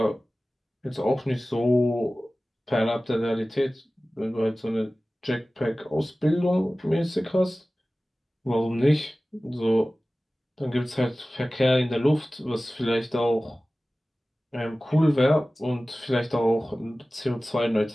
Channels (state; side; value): normal; both; correlation 0.97